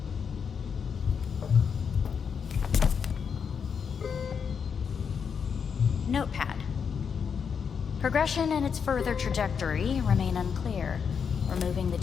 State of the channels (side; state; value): right; quieter; 6.6 dB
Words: Notepad. Progression and its further trajectory remain unclear. Removing the